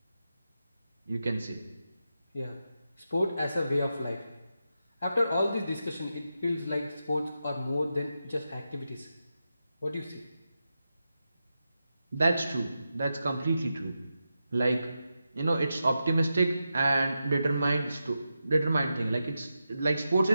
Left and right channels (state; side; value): inverted; both; correlation -0.89